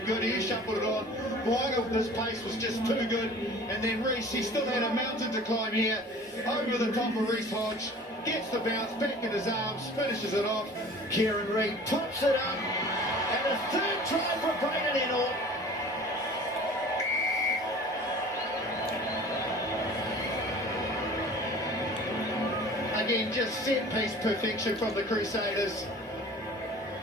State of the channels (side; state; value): both; normal; correlation 0.44